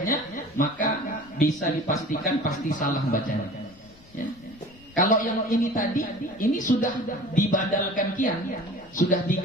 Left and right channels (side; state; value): left; noise; rumble, 25 dB below the sound